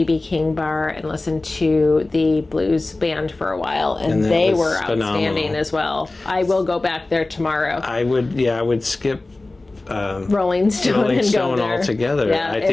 King bar and listened to the blues band for a while, and they were outstanding as well. I will go back there tomorrow. I would skip Rolling Stone and go there altogether. Yeah, I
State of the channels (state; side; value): quieter; right; 3.1 dB